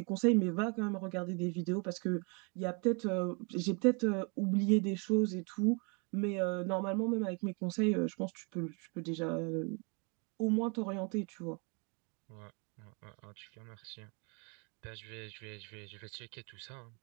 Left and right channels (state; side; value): quieter; left; 33.7 dB